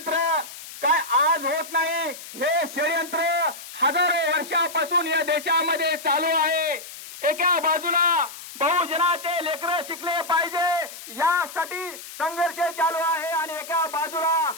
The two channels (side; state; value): left; noise; hiss, 14 dB below the sound